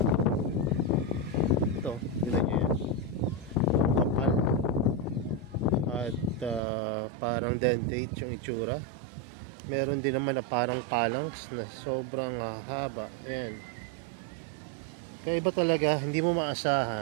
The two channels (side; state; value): left; drops out; at 6.6 s